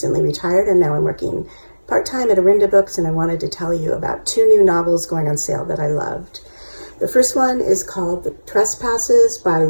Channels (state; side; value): inverted; both; correlation -1.00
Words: retired, and now I'm working part-time at Arinda Books, and I wanted to tell you about two new novels going on sale that I loved. The first one is called The Trespasses by